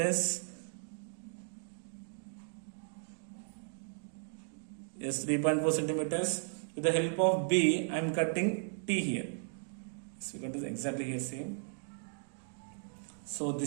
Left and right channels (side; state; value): left; silent; digital silence